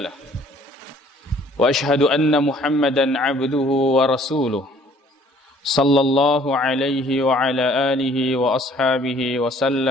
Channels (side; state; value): both; normal; correlation 0.57